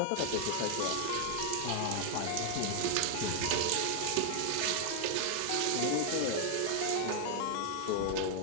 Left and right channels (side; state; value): both; different; correlation 0.00